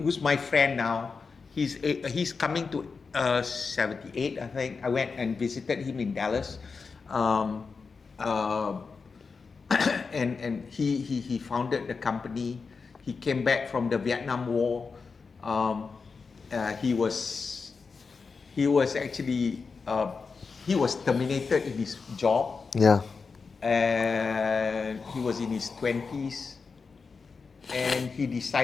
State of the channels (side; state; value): right; quieter; 4.9 dB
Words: my friend now. He's coming to 78, I think. I went and visited him in Dallas, and he founded the company. He came back from the Vietnam War. He was actually he was terminated in his job. Yeah. And he was in his 20s, and he